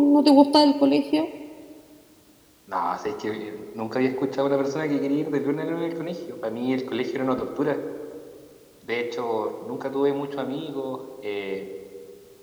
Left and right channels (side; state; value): both; identical; correlation 1.00